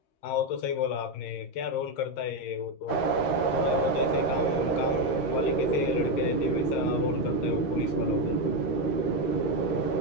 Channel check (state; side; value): late; right; 13 ms